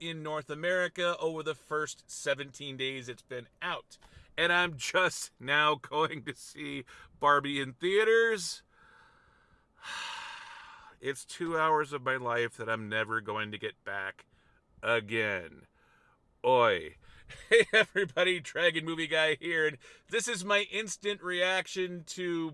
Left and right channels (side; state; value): both; identical; correlation 1.00